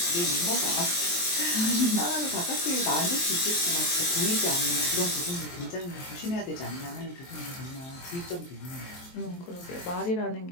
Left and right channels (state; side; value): late; right; 23 ms